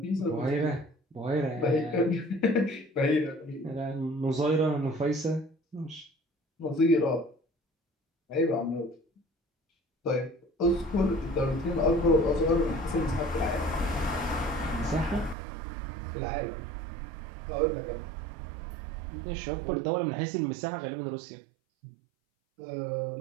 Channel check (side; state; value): left; drops out; at 15.4 s